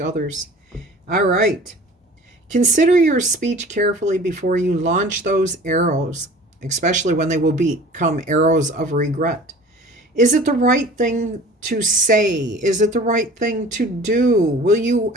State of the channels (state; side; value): normal; both; correlation 0.44